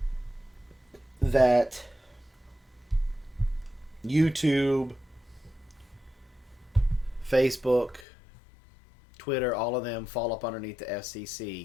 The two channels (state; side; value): drops out; right; at 8.1 s